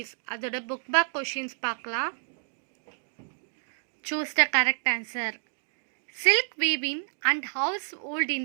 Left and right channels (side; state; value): left; silent; digital silence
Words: அதோட book back questions பார்க்கலாம். Choose the correct answer. Silk weaving and household